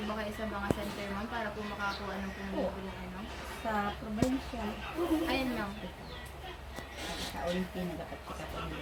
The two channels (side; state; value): both; identical; correlation 1.00